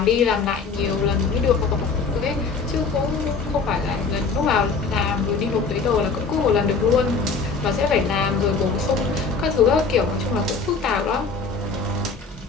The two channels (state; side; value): quieter; right; 4.7 dB